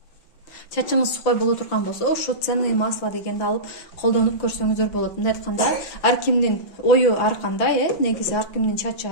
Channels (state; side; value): late; right; 5.6 ms